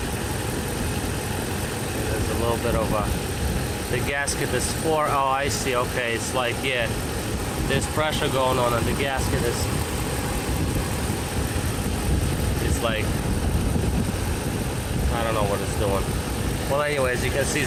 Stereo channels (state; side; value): identical; both; correlation 1.00